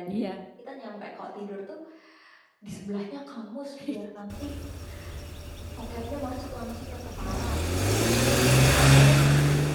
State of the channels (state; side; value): identical; both; correlation 1.00